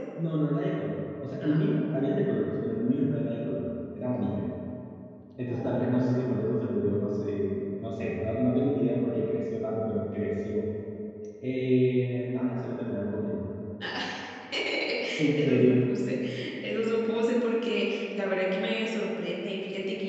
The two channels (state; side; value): identical; both; correlation 1.00